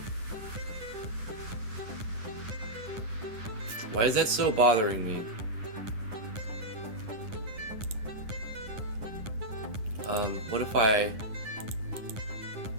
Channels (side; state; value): left; late; 9.9 ms